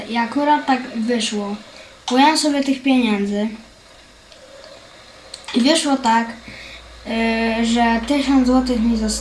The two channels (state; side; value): identical; both; correlation 1.00